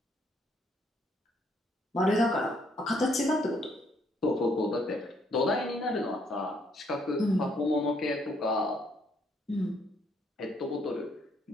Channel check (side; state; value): both; normal; correlation 0.69